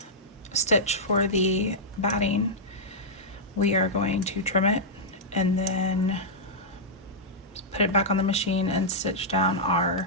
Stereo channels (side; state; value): both; normal; correlation -0.10